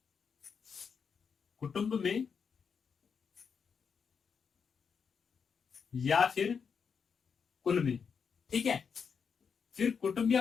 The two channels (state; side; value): quieter; right; 6.3 dB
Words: कुटुंब में या फिर कुल में। ठीक है, फिर कुटुंब